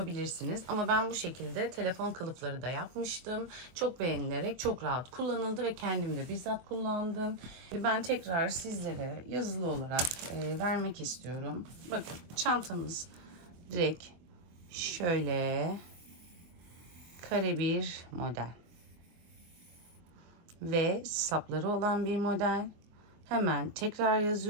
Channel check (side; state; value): left; late; 23 ms